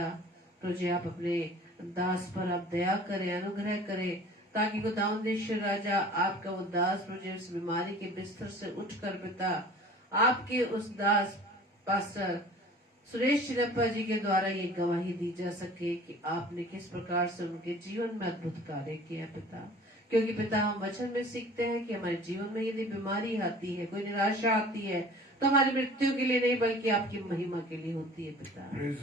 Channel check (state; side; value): normal; both; correlation 0.46